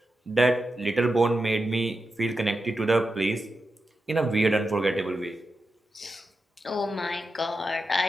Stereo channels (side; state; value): both; normal; correlation 0.89